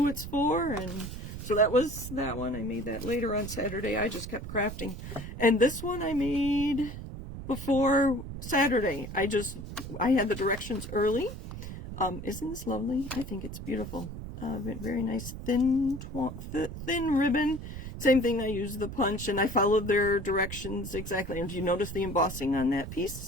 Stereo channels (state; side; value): noise; right; rumble, 9 dB below the sound